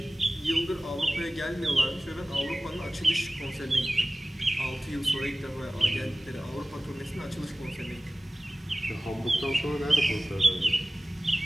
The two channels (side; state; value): both; normal; correlation 0.97